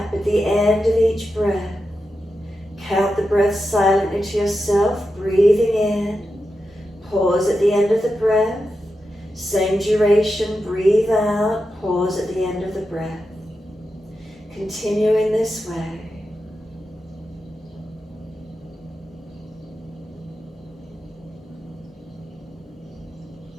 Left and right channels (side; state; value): both; normal; correlation 0.89